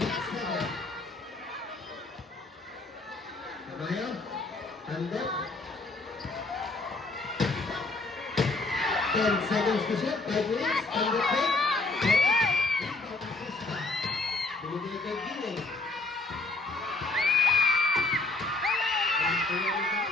Tamayo. Tandem. 10 seconds to shoot. 5 minutes. Tandem fake. Rebound Acosta. Binigay kay Giling.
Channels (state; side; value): quieter; right; 3.3 dB